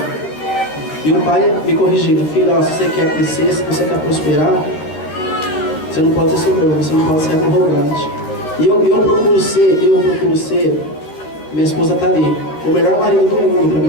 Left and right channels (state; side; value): late; right; 13 ms